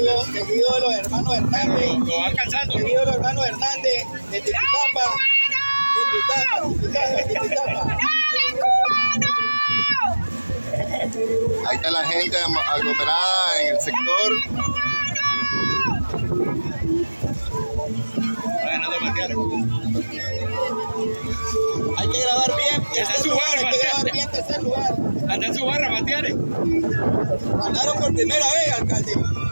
Seguido de los hermanos Hernández. Lo va alcanzando. Seguido de los hermanos Hernández de Tipitapa. Tipitapa. Ahí está la gente aglomerada en el sector. Va ganando Matiare. Hay que grabar bien. Anda en su barra, hay que grabar bien tercer lugar. Anda en su barra, Matiare. Ganaron por primera vez, alcalde.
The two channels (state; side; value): inverted; both; correlation -1.00